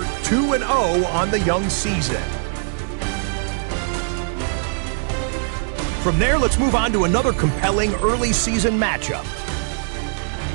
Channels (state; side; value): silent; left; digital silence